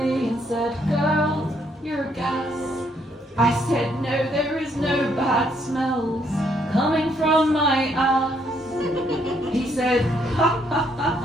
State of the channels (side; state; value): both; normal; correlation 0.71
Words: and said, girl, you're gas. I said, no, there is no bad smells coming from my ass. He said, ha ha ha